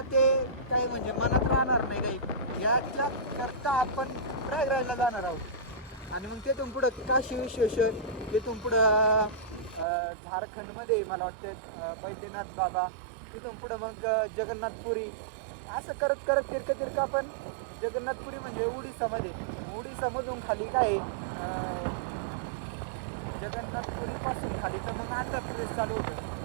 ते काही म्हणजे मनात राहणार नाही काही, याच्या करता आपण प्रयागराजला जाणार आहोत. आणि मग तिथून पुढं काशी विश्वेश्वर, तिथून पुढं झारखंडमध्ये मला वाटतं बैद्यनाथ बाबा, तिथून पुढं मग जगन्नाथपुरी, असं करत करत तिरकं आपण जगन्नाथपुरी म्हणजे उडीसामध्ये, उडीसामधून खाली काय जगन्नाथपुरीपासून खाली तर मग आंध्र प्रदेश चालू होतं.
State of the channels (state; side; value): drops out; left; at 9.9 s